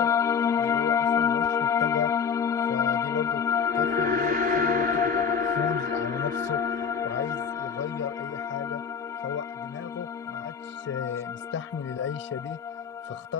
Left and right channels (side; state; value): right; quieter; 6.5 dB